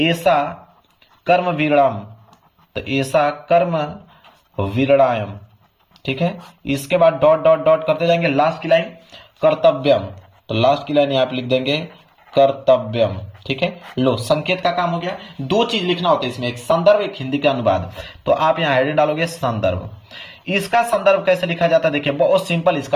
कर्म विरणाम, तो ऐसा कर्म विरणायम, ठीक है। इसके बाद डॉट डॉट डॉट करते जाएंगे, लास्ट की लाइन कर्तव्यम, तो लास्ट की लाइन यहां पे लिख देंगे कर्तव्यम, ठीक है। लो संकेत का काम हो गया। 2 चीज लिखना होता है इसमें, एक संदर्भ एक हिंदी का अनुवाद। तो आप यहां हेडिंग डालोगे संदर्भ। इसका संदर्भ कैसे लिखा जाता है, देखिए बहुत सिंपल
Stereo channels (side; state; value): both; identical; correlation 1.00